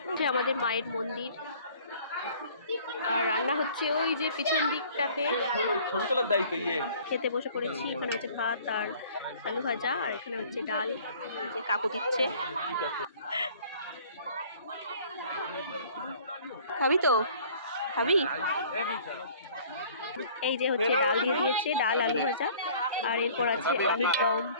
আমাদের মায়ের মন্দির, আর রান্না হচ্ছে ওই যে পিছন দিকটাতে। খেতে বসে পড়েছি। এখানে হচ্ছে ভাত আর আলু ভাজা, আর এখানে হচ্ছে ডাল, যে কাকু দিচ্ছে। খাবি তো? খাবি? এই যে হচ্ছে ডাল দিয়ে দিয়েছে, ডাল আলু ভাজা, আর এরপর আছে আলুর দম।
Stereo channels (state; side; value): inverted; both; correlation -0.52